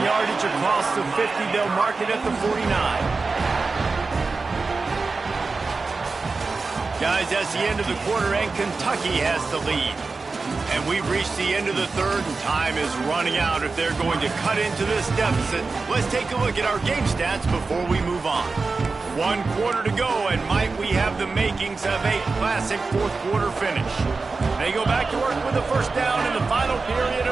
yardage across the 50. They'll mark it at the 49. Guys, that's the end of the quarter, and Kentucky has the lead. And we've reached the end of the third, and time is running out if they're going to cut into this deficit. Let's take a look at our game stats before we move on. 1 quarter to go, and might we have the makings of a classic fourth quarter finish. They go back to work with the first down in the final period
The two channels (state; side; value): quieter; left; 4.1 dB